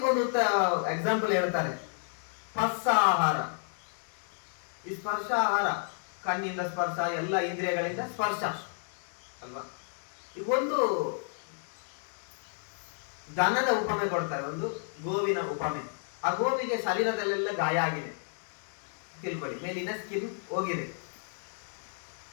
ಒಂದು ಎಕ್ಸಾಂಪಲ್ ಹೇಳ್ತಾರೆ, ಸ್ಪರ್ಶ ಆಹಾರ. ಈ ಸ್ಪರ್ಶ ಆಹಾರ ಕಣ್ಣಿಂದ ಸ್ಪರ್ಶ, ಎಲ್ಲ ಇಂದ್ರಿಯಗಳಿಂದ ಸ್ಪರ್ಶ ಅಲ್ವಾ. ಈಗ ಒಂದು ದನದ ಉಪಮೆ ಕೊಡ್ತಾರೆ, ಒಂದು ಗೋವಿನ ಉಪಮೆ. ಆ ಗೋವಿಗೆ ಶರೀರದಲ್ಲೆಲ್ಲ ಗಾಯ ಆಗಿದೆ ತಿಳ್ಕೊಳ್ಳಿ, ಮೇಲಿನ ಸ್ಕಿನ್ ಹೋಗಿದೆ.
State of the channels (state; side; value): silent; right; digital silence